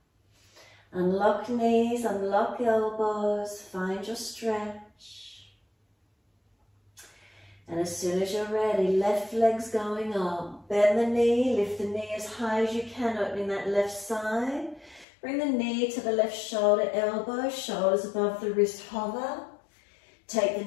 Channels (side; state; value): right; drops out; at 15.1 s